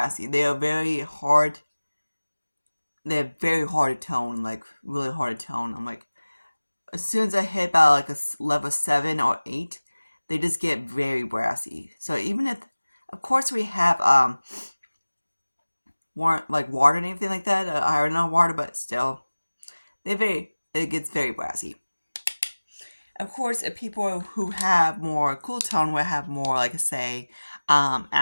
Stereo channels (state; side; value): inverted; both; correlation -1.00